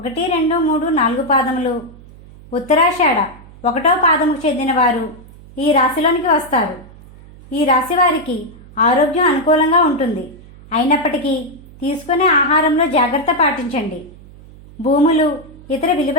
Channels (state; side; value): noise; right; hum, 21 dB below the sound